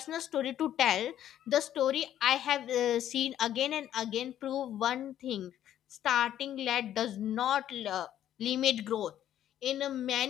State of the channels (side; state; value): right; quieter; 11.3 dB